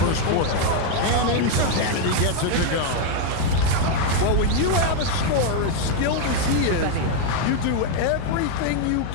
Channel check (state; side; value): different; both; correlation 0.01